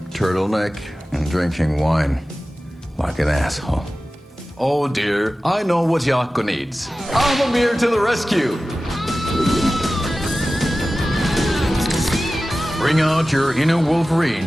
turtleneck and drinking wine. Like an asshole. Oh dear, I know what Yako needs. Amamir to the rescue! Bring out your inner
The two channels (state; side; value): normal; both; correlation 0.95